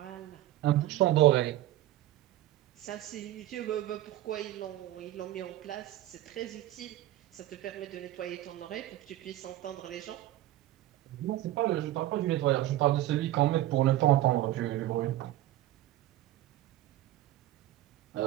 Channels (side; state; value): left; quieter; 14.6 dB